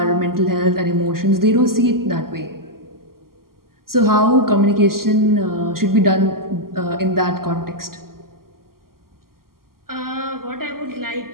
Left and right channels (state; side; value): late; left; 0.92 ms